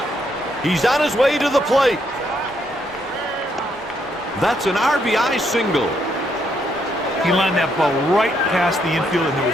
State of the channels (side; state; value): both; normal; correlation 0.75